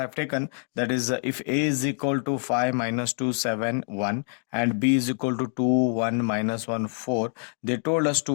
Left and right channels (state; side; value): silent; right; 58 dB below the other